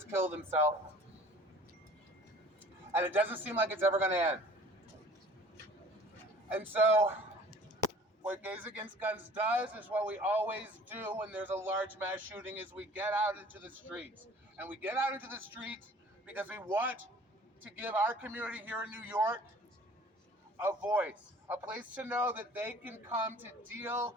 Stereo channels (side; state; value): both; normal; correlation 0.49